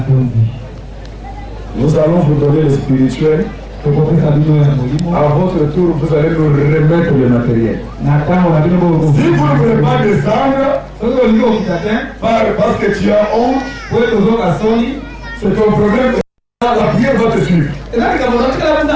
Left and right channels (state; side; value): identical; both; correlation 1.00